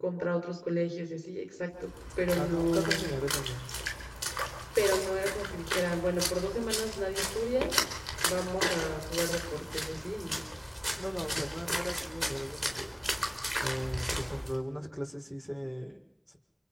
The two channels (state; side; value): identical; both; correlation 1.00